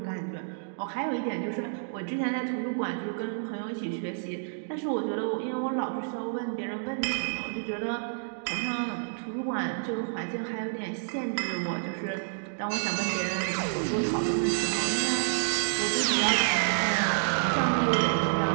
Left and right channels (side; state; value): left; silent; digital silence